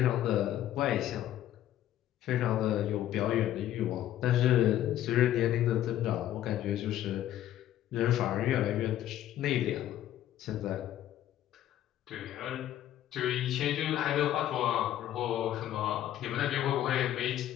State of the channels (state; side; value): quieter; right; 12.4 dB